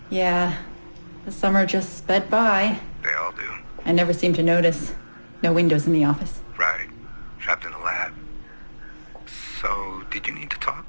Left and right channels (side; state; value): both; inverted; correlation -1.00